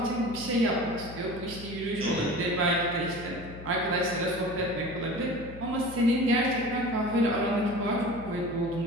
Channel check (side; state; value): left; noise; hum, 14 dB below the sound